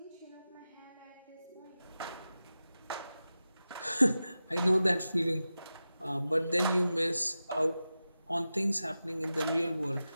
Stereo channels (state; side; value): inverted; both; correlation -0.93